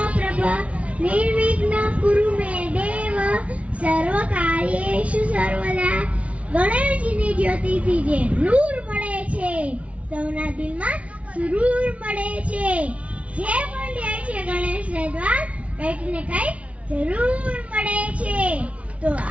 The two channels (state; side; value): late; left; 0.064 ms